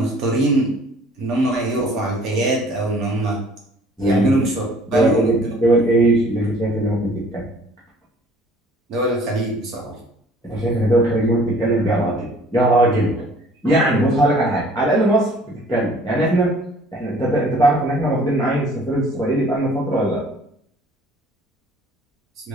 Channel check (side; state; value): both; normal; correlation 0.54